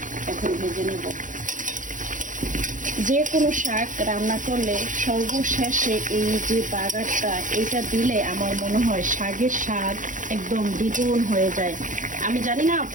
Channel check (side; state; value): left; late; 0.37 ms